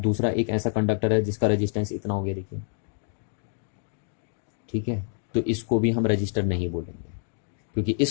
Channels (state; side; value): silent; right; digital silence